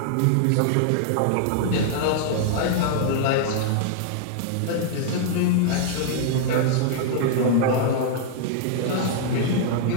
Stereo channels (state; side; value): different; both; correlation -0.01